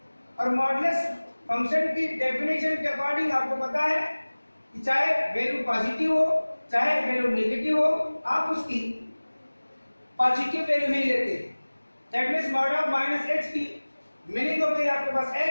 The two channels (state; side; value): inverted; both; correlation -1.00